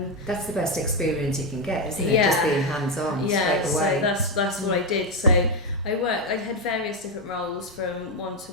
the best experience you can get, isn't it? Just being hands-on straight away. So that's what I did. So I had various different roles, from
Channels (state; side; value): normal; both; correlation 0.07